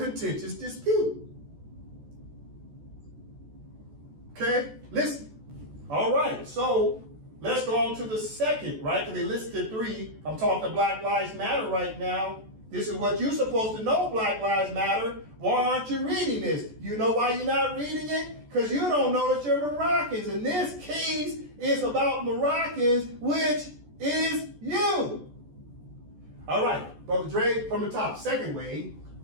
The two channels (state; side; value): late; left; 14 ms